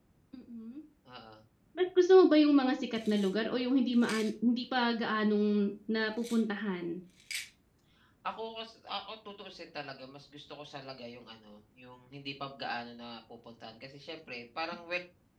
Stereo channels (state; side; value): identical; both; correlation 1.00